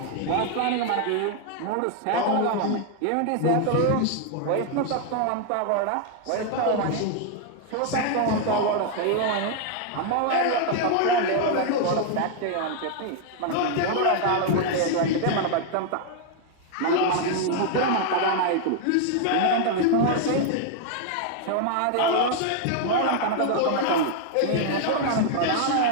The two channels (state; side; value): different; both; correlation 0.00